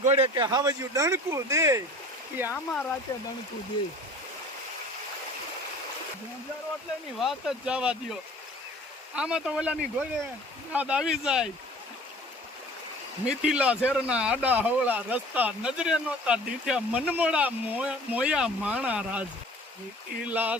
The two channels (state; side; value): normal; both; correlation 0.46